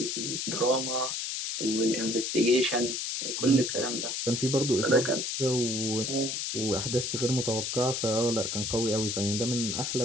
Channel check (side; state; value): left; noise; hiss, 2 dB below the sound